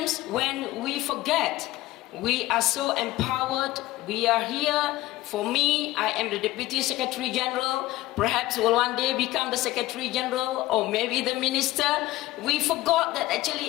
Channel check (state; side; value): quieter; right; 17.1 dB